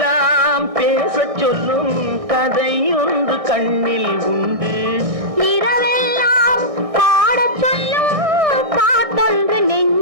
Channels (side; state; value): left; late; 1.6 ms